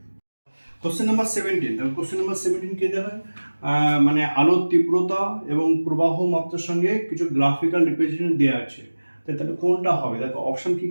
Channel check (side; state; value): both; inverted; correlation -1.00